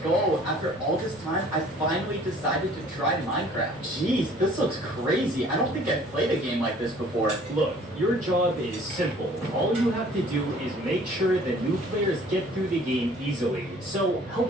go! After all this time, I finally decided to try Minecraft. Jeez, this looks crazy. I don't think I've played a game like this before. Look, your job is simple. All you have to do is make sure that new players get through the game easily. So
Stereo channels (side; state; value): both; normal; correlation 0.53